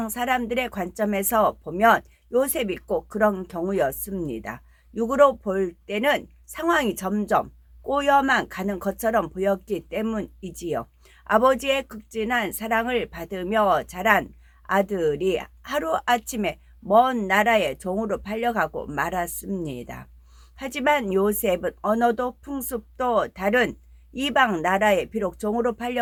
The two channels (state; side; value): identical; both; correlation 1.00